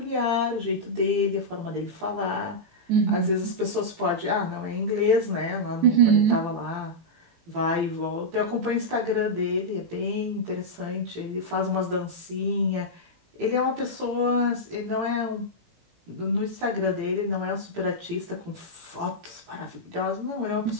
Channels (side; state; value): left; late; 18 ms